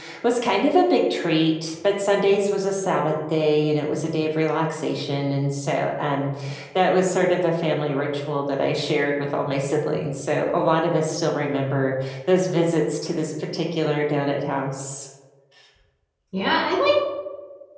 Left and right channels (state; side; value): identical; both; correlation 1.00